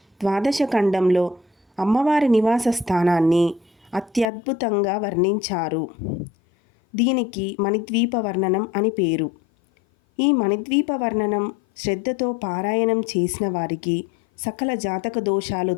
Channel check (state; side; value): drops out; right; at 4.2 s